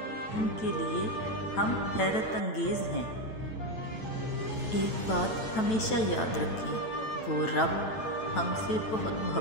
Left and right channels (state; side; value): late; right; 9.1 ms